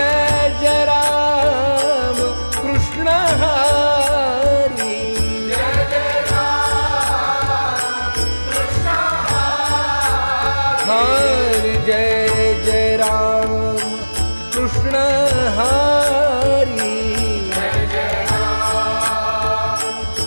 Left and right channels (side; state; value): both; inverted; correlation -1.00